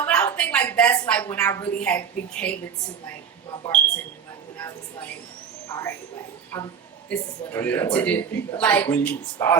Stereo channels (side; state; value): left; quieter; 7.2 dB